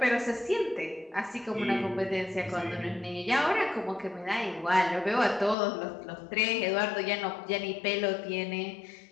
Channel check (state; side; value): drops out; right; at 5.6 s